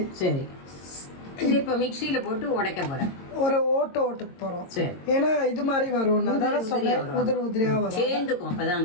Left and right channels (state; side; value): late; right; 22 ms